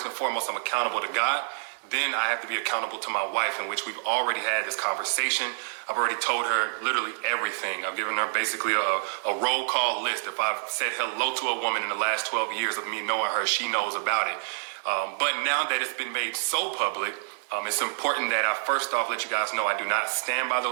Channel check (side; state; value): left; silent; digital silence